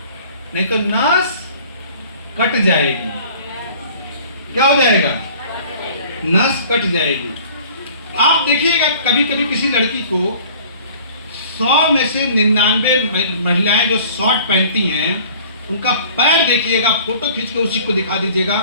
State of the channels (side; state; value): both; inverted; correlation -0.49